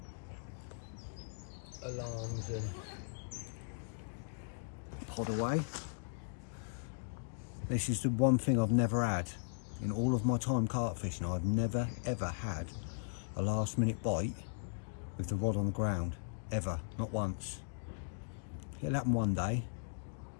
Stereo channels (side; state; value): right; silent; digital silence